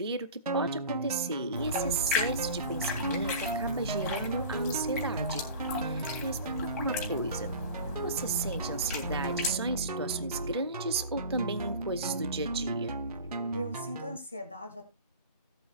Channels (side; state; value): both; inverted; correlation -0.38